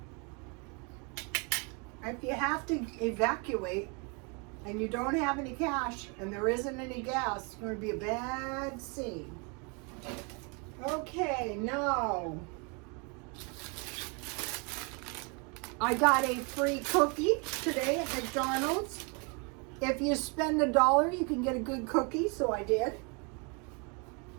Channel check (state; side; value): quieter; left; 33.4 dB